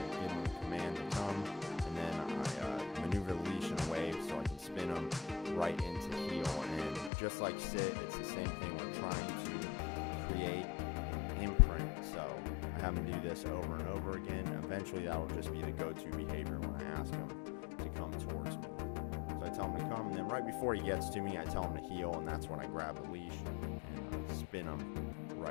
give him a command to come, and then I maneuver the leash in a wave so I can spin him right into heel. And just like sit, it's the same thing. We're trying to create an imprint. So I have him do this over and over again. Eventually that'll just be the go-to behavior when I ask him to come towards me. So I tell him to come, and then right before he gets to me, I tell him to heel, and that's when I grab the leash and spin him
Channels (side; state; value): right; drops out; at 7.1 s